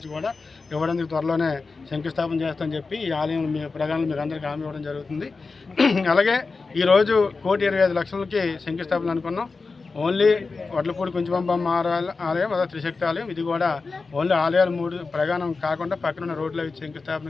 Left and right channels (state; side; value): quieter; right; 4.2 dB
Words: కూడా ఇవ్వడానికి త్వరలోనే శంకుస్థాపన చేస్తామని చెప్పి ఈ ఆలయం మీ ప్రజలను మీకు అందరికీ హామీ ఇవ్వడం జరుగుతుంది. అలాగే ఈరోజు 1,25 లక్షలకి శంకుస్థాపన అనుకున్నాం. ఓన్లీ వడ్లపూడి కుంచుబంబమ్మ ఆలయం, అదే త్రిశక్తి ఆలయం, ఇది కూడా ఓన్లీ ఆలయాలు 3 ప్రగానం కాకుండా పక్కన రోడ్ల